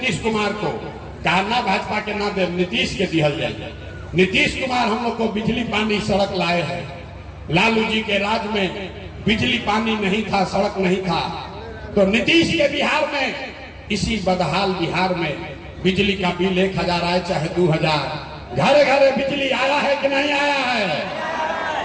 कुमार को कहा ना भाजपा के ना दे, नीतीश के दिहल जाए। नीतीश कुमार हम लोग को बिजली पानी सड़क लाए हैं। लालू जी के राज में बिजली पानी नहीं था, सड़क नहीं था, तो नीतीश के बिहार में, इसी बदहाल बिहार में बिजली का बिल 1000 आए चाहे 2000, घरे घरे बिजली आया है कि नहीं आया है?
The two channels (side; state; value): both; identical; correlation 1.00